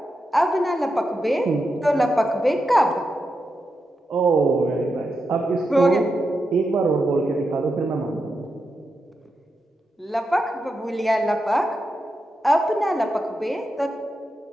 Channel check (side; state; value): both; normal; correlation 0.87